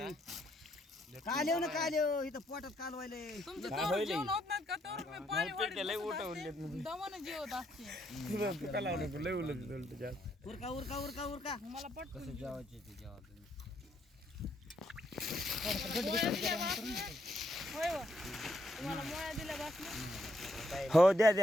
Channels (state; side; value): normal; both; correlation 0.74